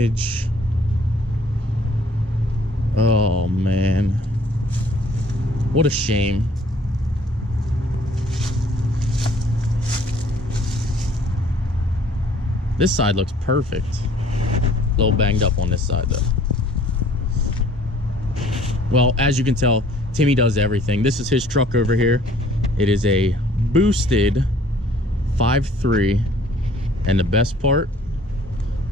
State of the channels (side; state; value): both; normal; correlation 0.56